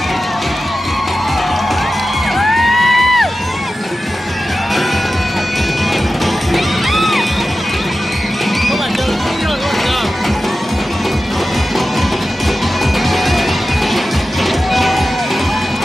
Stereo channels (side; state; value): both; normal; correlation 0.93